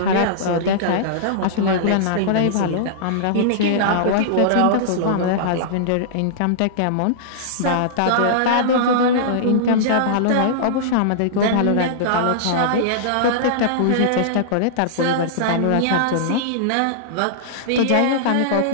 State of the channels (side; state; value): both; different; correlation -0.02